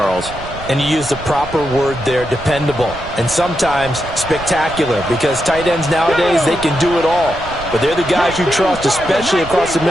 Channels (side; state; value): right; noise; rumble, 13 dB below the sound